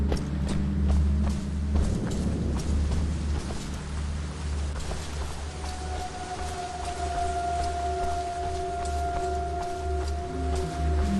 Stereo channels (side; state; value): both; identical; correlation 1.00